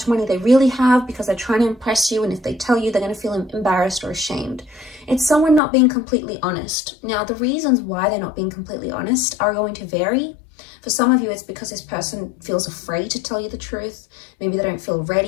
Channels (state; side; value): drops out; right; at 5.6 s